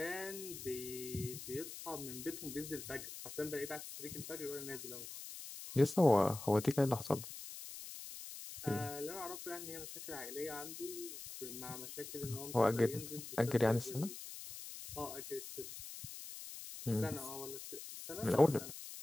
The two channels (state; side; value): noise; left; hiss, 10 dB below the sound